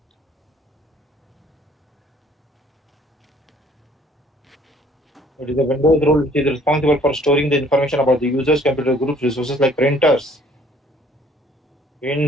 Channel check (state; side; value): normal; both; correlation 0.58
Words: It is a Windows role which is responsible for storing the information about the users, computer groups, resources like printers,